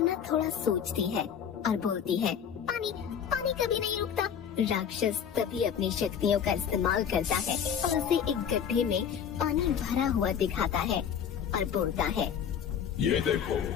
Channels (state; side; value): quieter; right; 8.1 dB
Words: थोड़ा सोचती है और बोलती है, पानी, पानी कभी नहीं रुकता। राक्षस तभी अपनी शक्तियों का इस्तेमाल करता है और उसे एक गड्ढे में पानी भरा हुआ दिखाता है और बोलता है, ये देखो,